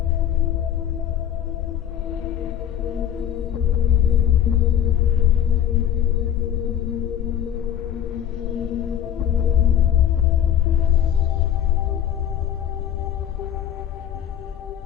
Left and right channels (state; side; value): quieter; right; 9.8 dB